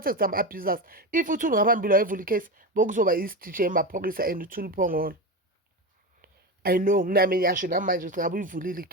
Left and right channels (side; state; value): both; normal; correlation 0.20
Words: some abusers. If uThule ngaphambili wayevula icase, bokuzoba i-DJ emaphoyisa and uThule phongolo. I know nami ngiyasho namanje ukuthi ngabe uyivulile